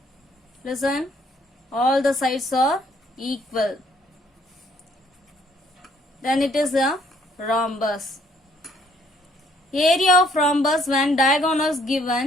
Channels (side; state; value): both; normal; correlation 0.64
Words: Listen, all the sides are equal, then it is a rhombus. Area of rhombus when diagonals